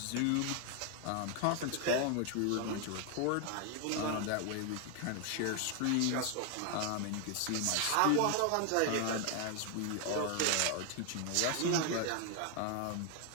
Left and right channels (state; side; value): different; both; correlation 0.00